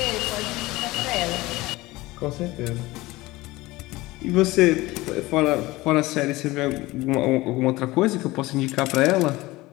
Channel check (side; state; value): right; quieter; 19.8 dB